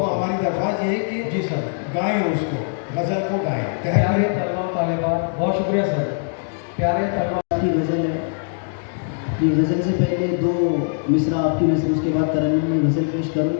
हमारी दरख्वास्त ये है कि जी सर, गाएं उसको, गज़ल को गाएं। प्यारे तलबा तालिबात, बहुत शुक्रिया सर। प्यारे तलबा की गज़ल है, ये गज़ल से पहले 2 मिसरा आपकी नज़र, उसके बाद तरन्नुम में गज़ल पेश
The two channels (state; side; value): silent; right; digital silence